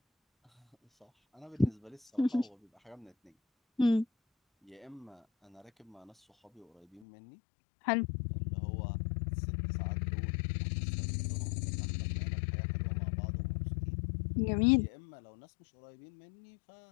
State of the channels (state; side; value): drops out; right; at 7.1 s